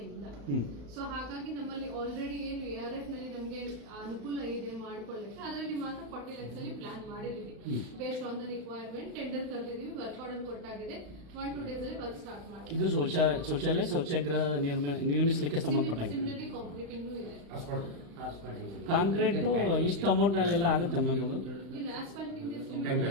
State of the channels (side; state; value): left; late; 35 ms